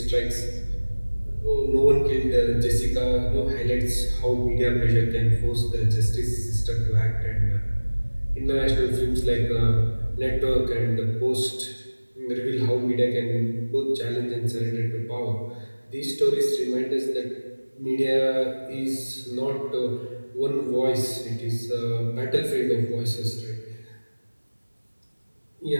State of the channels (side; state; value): both; inverted; correlation -1.00